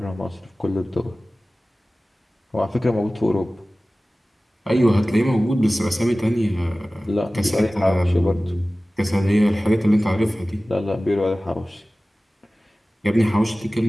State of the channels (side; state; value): both; normal; correlation 0.97